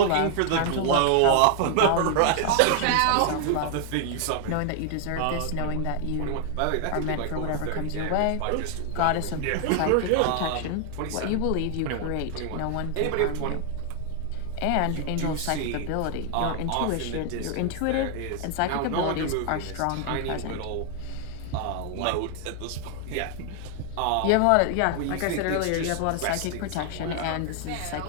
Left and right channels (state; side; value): different; both; correlation 0.00